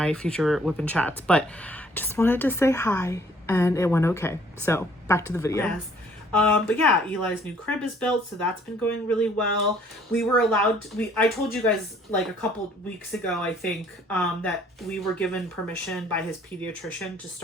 future whipping chats, but just wanted to say hi, and it went okay. So back to the video. Yes. But yeah, Eli's new crib is built, so that's been going really well. We were allowed I told you guys like a couple weeks ago, I think, that we were given permission by his pediatrician to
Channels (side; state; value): both; normal; correlation 0.60